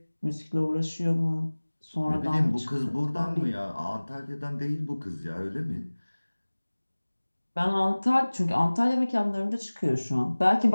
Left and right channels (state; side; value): inverted; both; correlation -1.00